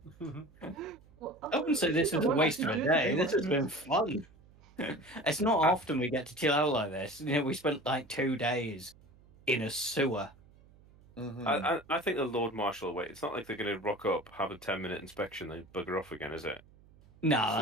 Well, I wouldn't say this is a waste of a day. This has been fun. It's not often we get to chill out like this. You know, we spent like 2 days in a sewer. Mm-hmm. I think the Lord Marshal will wait. It's not like they're going to rock up, have a 10-minute inspection, then bugger off again, is it? No, So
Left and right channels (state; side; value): noise; right; hum, 26 dB below the sound